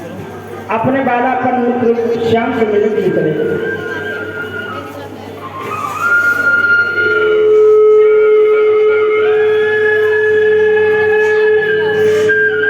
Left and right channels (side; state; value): both; identical; correlation 1.00